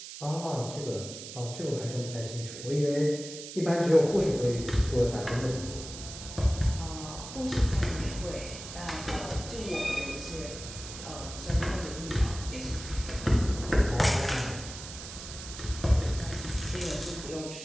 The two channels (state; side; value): noise; right; hiss, 11 dB below the sound